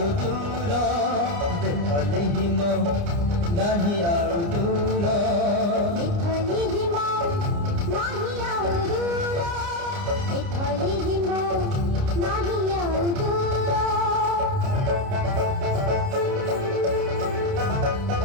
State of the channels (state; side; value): late; left; 29 ms